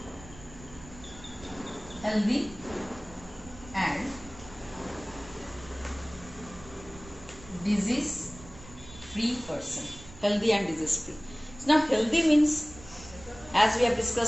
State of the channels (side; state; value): right; noise; rumble, 18 dB below the sound